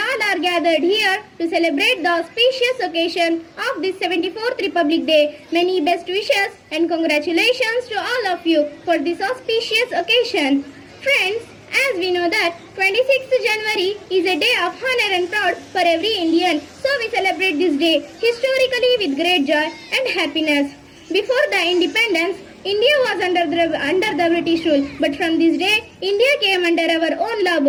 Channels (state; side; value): identical; both; correlation 1.00